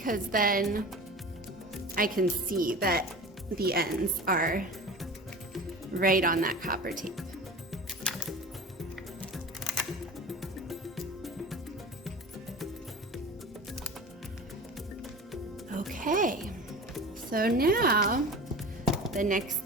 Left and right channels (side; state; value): both; normal; correlation 0.35